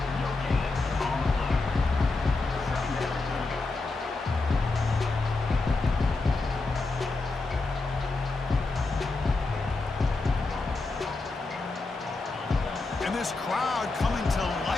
This crowd coming to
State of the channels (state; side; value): quieter; right; 3.5 dB